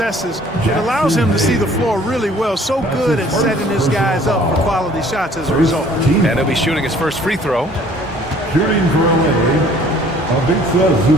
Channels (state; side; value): normal; both; correlation 0.55